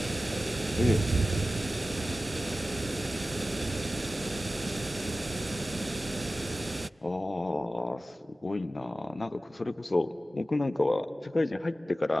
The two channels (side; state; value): both; normal; correlation 0.95